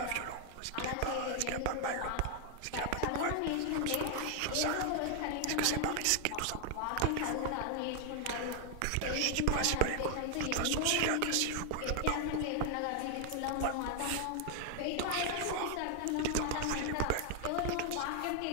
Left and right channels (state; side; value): different; both; correlation 0.00